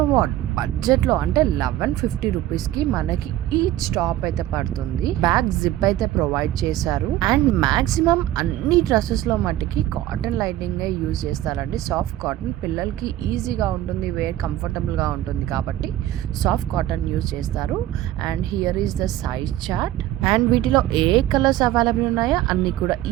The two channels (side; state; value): left; quieter; 13.9 dB